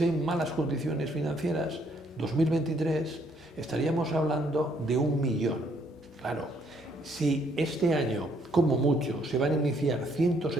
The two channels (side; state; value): both; normal; correlation 0.68